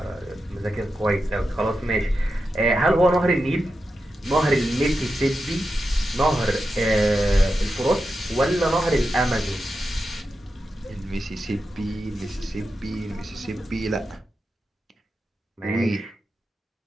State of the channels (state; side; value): normal; both; correlation 0.89